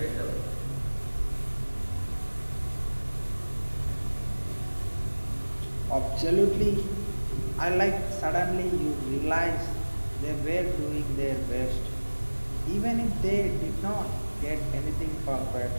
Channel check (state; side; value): inverted; both; correlation -1.00